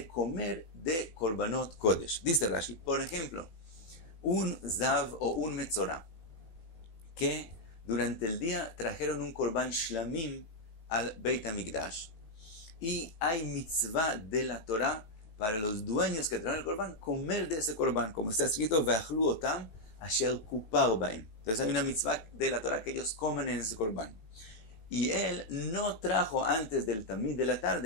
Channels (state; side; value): late; right; 18 ms